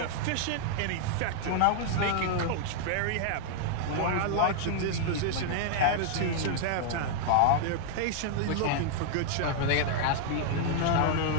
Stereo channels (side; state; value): both; different; correlation -0.01